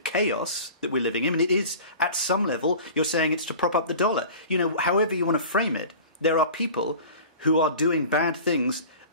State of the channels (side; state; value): both; inverted; correlation -0.39